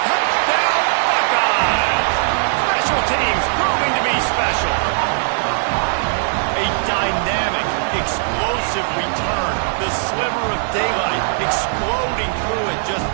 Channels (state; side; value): silent; left; 63 dB below the other